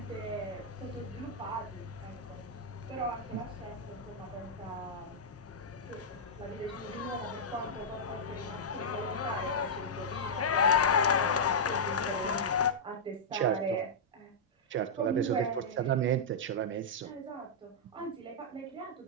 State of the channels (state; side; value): normal; both; correlation -0.09